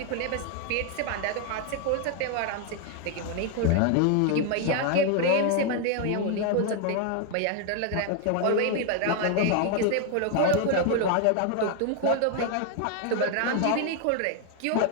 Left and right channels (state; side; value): different; both; correlation 0.00